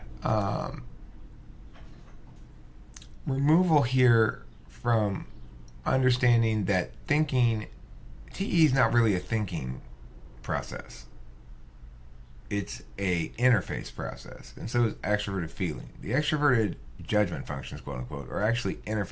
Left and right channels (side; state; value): both; identical; correlation 1.00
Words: removal here from understanding that thinking, TE is not really a thinking process. It's a interface process, and so is extroverted feeling. The extroverted judgment functions, quote unquote, are actually